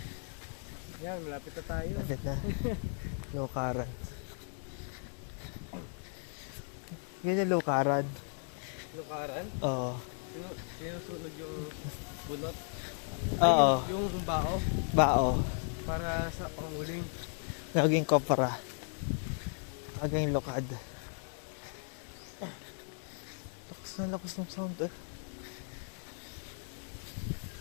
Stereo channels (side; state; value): right; silent; 54 dB below the other